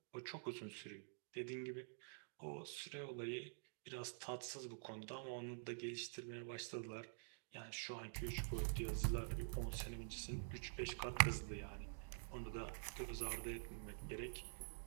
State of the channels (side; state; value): left; silent; digital silence